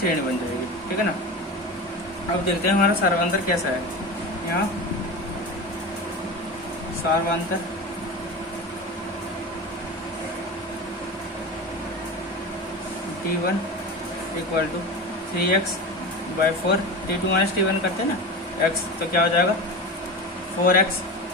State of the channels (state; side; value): normal; both; correlation 0.27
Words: बन जाएगी। ठीक है ना। अब देखते हैं हमारा सारवांतर कैसा है। यहाँ सारवांतर T1 equal to 3x/4, T2 minus T1 करते हैं ना x, तो क्या हो जाएगा 4x।